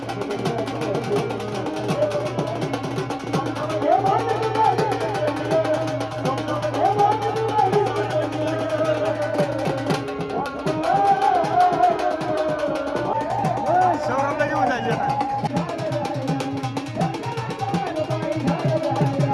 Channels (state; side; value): identical; both; correlation 1.00